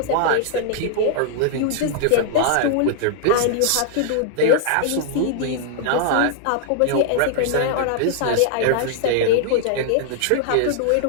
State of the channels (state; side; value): different; both; correlation -0.01